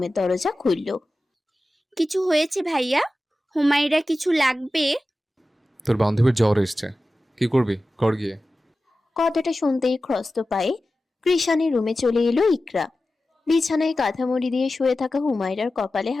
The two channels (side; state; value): both; normal; correlation 0.94